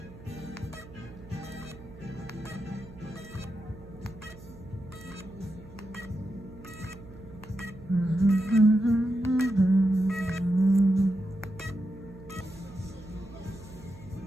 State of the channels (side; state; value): right; noise; hum, 18 dB below the sound